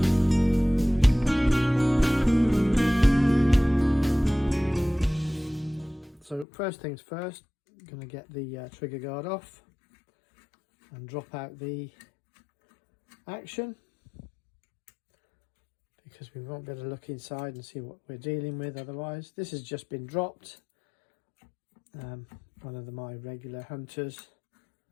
So first things first, I'm going to get the trigger guard off and drop out the action, because we won't be able to look inside and see what we're dealing with otherwise. This has just been dropped. One of my regular hunters.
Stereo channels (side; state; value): right; drops out; at 6.5 s